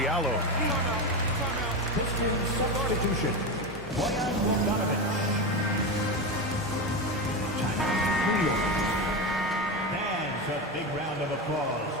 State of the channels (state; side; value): normal; both; correlation 0.17